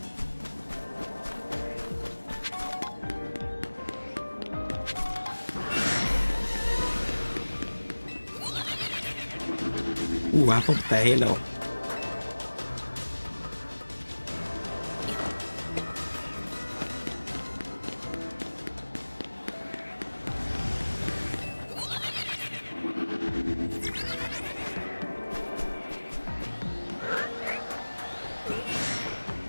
Ooh, apple with the halo.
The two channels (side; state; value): both; inverted; correlation -1.00